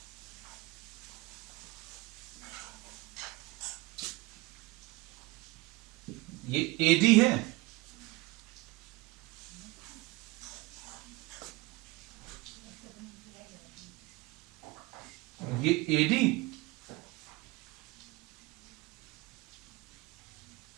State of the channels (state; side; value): quieter; left; 21.3 dB